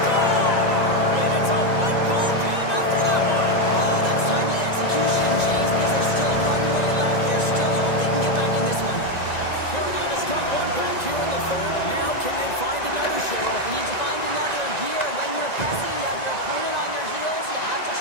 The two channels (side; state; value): right; late; 1.9 ms